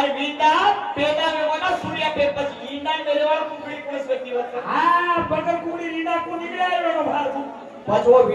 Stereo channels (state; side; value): identical; both; correlation 1.00